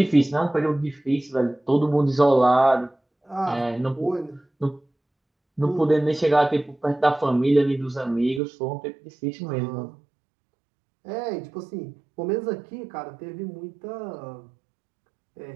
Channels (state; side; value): drops out; left; at 8.4 s